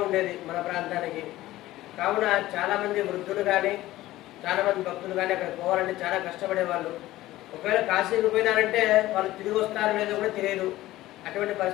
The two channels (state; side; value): quieter; right; 16.2 dB